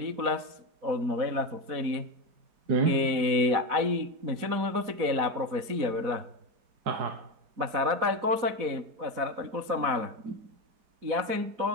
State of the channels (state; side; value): late; left; 4.1 ms